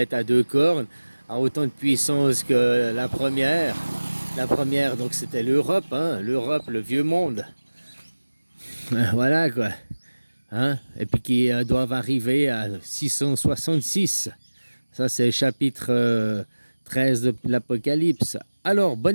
à deux cornes, a autant de puissance que la première. La première, donc c'était l'Europe, hein, l'Europe, le vieux monde. Voilà quoi. Hein? Et puis qui doivent arriver à 666. Ça, c'est le chapitre 13 de l'Apocalypse. Alors,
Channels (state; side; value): inverted; both; correlation -1.00